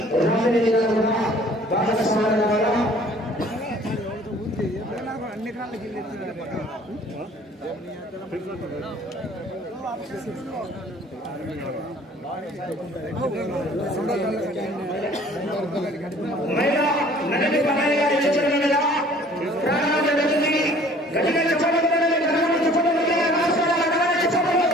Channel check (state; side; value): normal; both; correlation 0.53